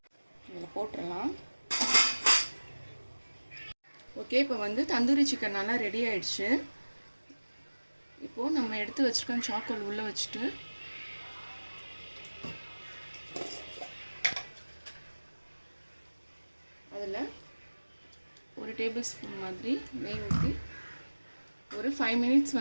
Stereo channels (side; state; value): both; inverted; correlation -1.00